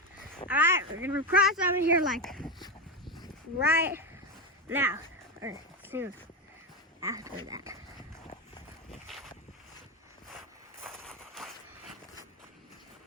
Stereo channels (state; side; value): normal; both; correlation 0.13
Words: Alright, we're gonna cross over here like right now, or soon after that.